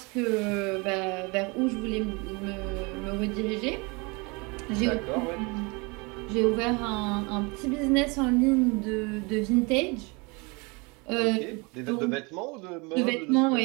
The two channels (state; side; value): quieter; left; 28.4 dB